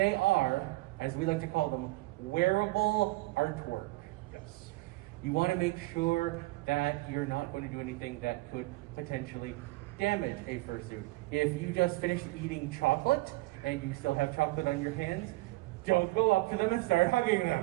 are, as we like to call them, wearable artwork. Yes. You want to make sure that you're not going to do anything that could potentially damage a fursuit. If you just finished eating chocolate and you still have chocolate on your hands, don't go up to them and start hugging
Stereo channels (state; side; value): quieter; left; 20.8 dB